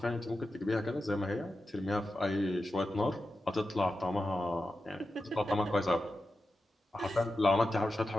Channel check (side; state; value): both; normal; correlation 0.91